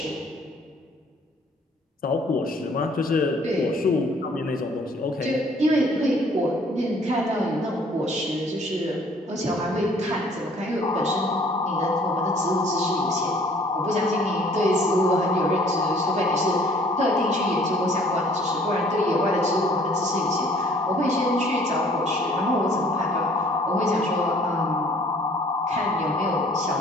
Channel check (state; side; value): normal; both; correlation 0.57